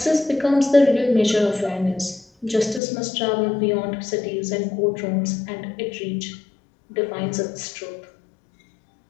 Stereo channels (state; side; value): drops out; right; at 2.8 s